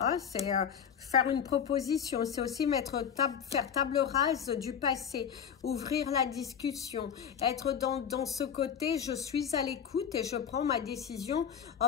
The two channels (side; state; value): right; quieter; 7.9 dB